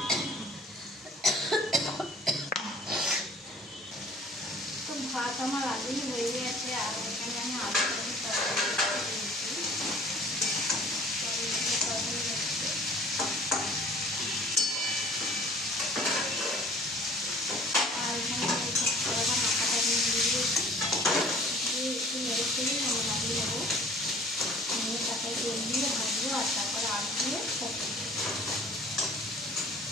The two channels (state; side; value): normal; both; correlation 0.49